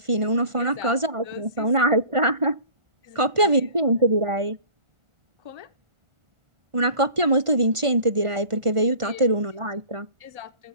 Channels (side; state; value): left; late; 1.5 ms